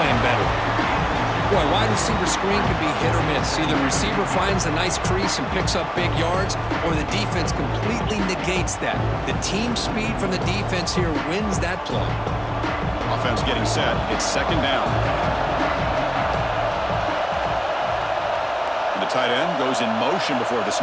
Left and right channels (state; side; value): identical; both; correlation 1.00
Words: better. Boy, wide receiver screen can be hit or miss. Either the receiver finds a nice crease and picks up big yards, or the defense completely negates that. The team speed from the defense here wins that play. Offense getting set. It's second down. And the tight end goes in motion before the